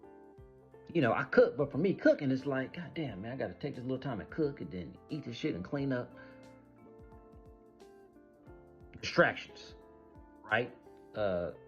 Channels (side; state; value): both; identical; correlation 1.00